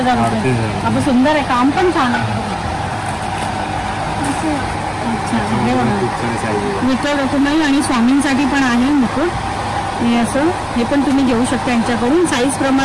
रुपये. आपण सुंदर आहे. काम पण छान आहे. अच्छा, हे बघा विठ्ठल रखुमाई आणि स्वामींसाठी पण आहे मुकुट. हे असं हे पण तुम्ही घेऊ शकता यांच्याकडून. साईज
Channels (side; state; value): both; identical; correlation 1.00